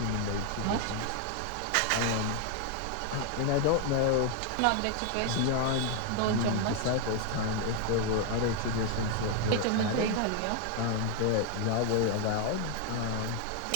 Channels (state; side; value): different; both; correlation 0.00